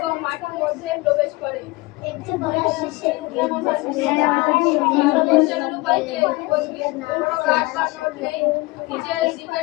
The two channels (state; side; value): quieter; right; 23.2 dB